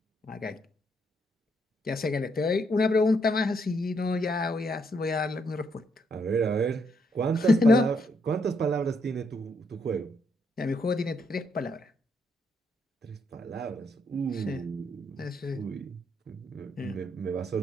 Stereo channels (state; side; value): normal; both; correlation 0.75